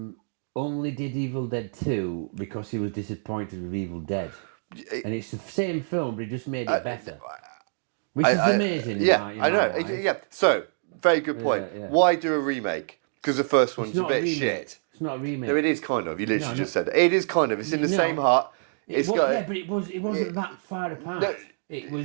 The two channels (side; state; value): left; silent; digital silence